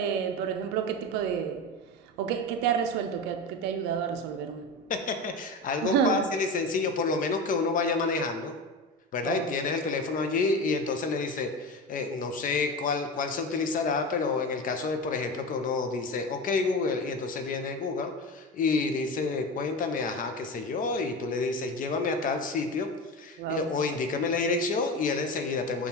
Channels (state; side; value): normal; both; correlation 0.25